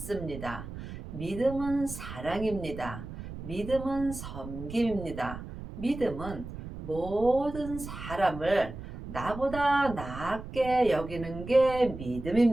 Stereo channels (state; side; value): noise; right; rumble, 10 dB below the sound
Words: 믿음은 사랑입니다. 믿음은 섬김입니다. 믿음은 모든 사람을 나보다 낫게 여기는 게